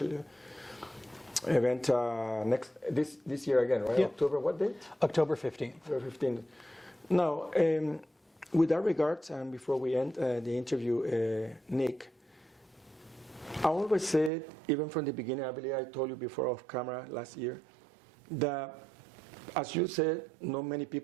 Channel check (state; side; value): drops out; left; at 14.3 s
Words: event this year again, right? Yeah. October, what date? October 15th. October 15th. Now, with that regards, and before we end the interview, Nick, I always said, even from the beginning, I believe I told you before off camera last year, that, as you said, not many